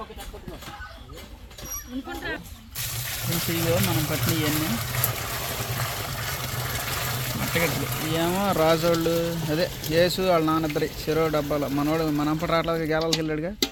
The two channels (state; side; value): identical; both; correlation 1.00